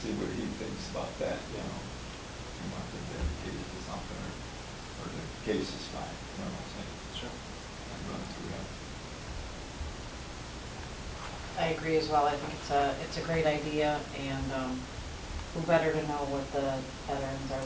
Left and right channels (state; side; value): identical; both; correlation 1.00